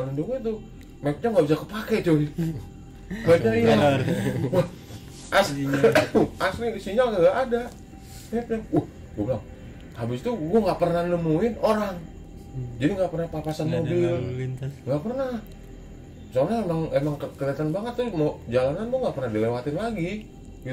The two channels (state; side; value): identical; both; correlation 1.00